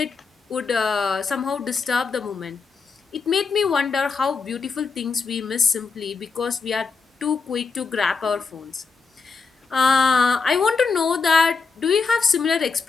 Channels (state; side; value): quieter; right; 4.8 dB